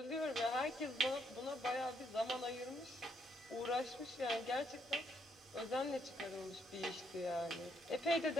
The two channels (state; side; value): normal; both; correlation 0.73